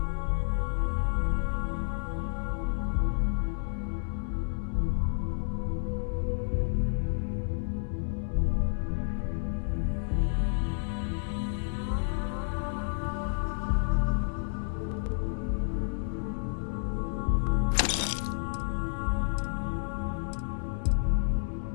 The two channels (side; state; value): right; silent; digital silence